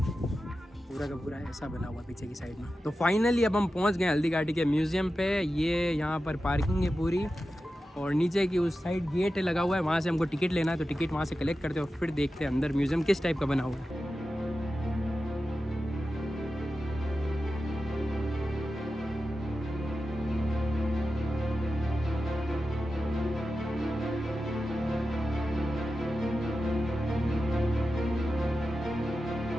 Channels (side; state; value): both; normal; correlation 0.92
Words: का पूरा ऐसा बना हुआ पीछे की साइड में। तो फाइनली अब हम पहुँच गए हल्दी घाटी के म्यूज़ियम पे। ये यहाँ पर पार्किंग है पूरी और नीचे की उस साइड गेट लगा हुआ है, वहाँ से हमको टिकट लेना है। तो टिकट वहाँ से कलेक्ट करते हैं और फिर देखते हैं अंदर म्यूज़ियम किस टाइप का बना हुआ है।